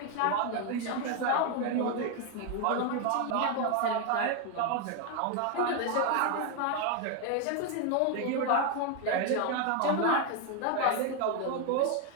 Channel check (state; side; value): different; both; correlation 0.01